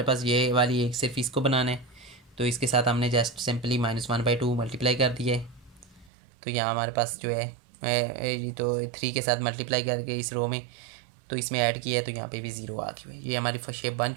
पास ये वाली एक सिर्फ इसको बनाना है, तो इसके साथ हमने जस्ट सिंपली -1/2 मल्टीप्लाई कर दिया है, तो यहाँ हमारे पास जो है तो 3 के साथ मल्टीप्लाई करके इस रो में तो इसमें ऐड किया है, तो यहाँ पे भी 0 आ गई। ये हमारी शेप बन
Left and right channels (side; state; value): left; drops out; at 6.1 s